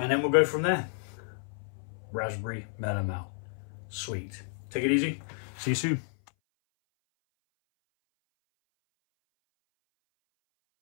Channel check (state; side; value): silent; right; 57 dB below the other